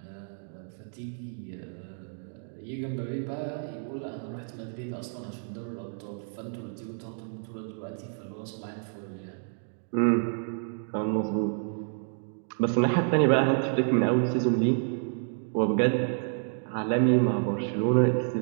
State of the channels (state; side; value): silent; left; digital silence